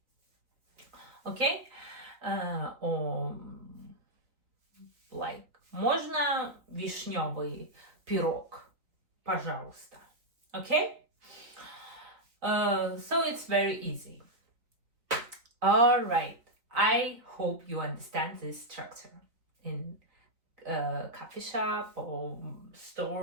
Okay? Or like, можно вишневый пирог, пожалуйста. Okay? So it's very easy. All right. I hope you understand this structure in coffee shop or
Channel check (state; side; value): late; left; 3.7 ms